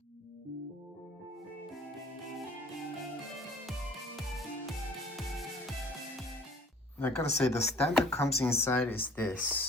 I gotta say, the stand that comes inside is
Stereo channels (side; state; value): both; normal; correlation 0.51